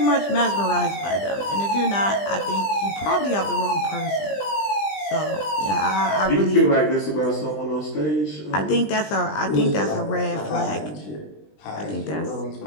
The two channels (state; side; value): late; right; 20 ms